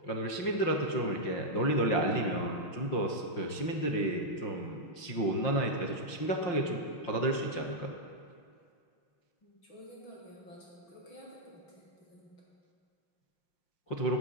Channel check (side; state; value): right; late; 5.7 ms